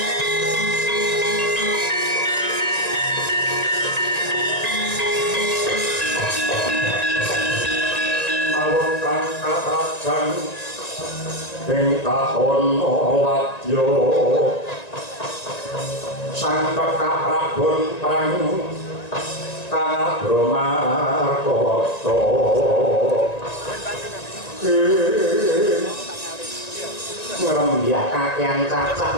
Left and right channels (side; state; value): right; late; 1.9 ms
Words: ing tahun wadya sang Prabon prang Kabramarkata kakyang cacah